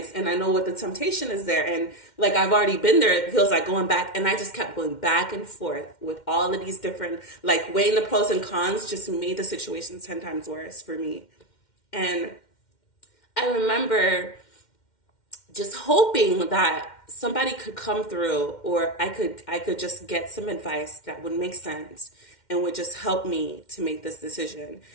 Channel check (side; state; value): right; late; 2.1 ms